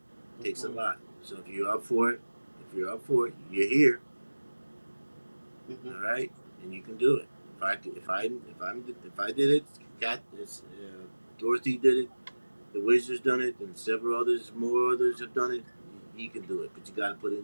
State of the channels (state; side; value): inverted; both; correlation -1.00